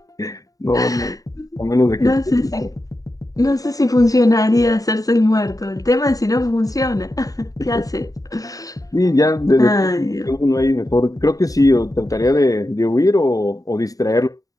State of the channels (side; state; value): right; late; 0.17 ms